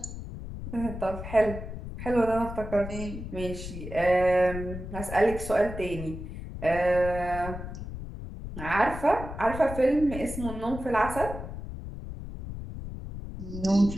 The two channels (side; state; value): left; noise; rumble, 9 dB below the sound